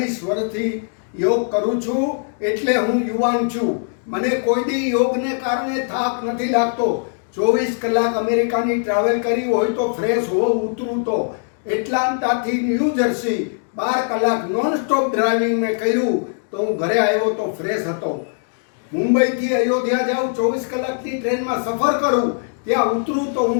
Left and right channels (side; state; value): right; silent; digital silence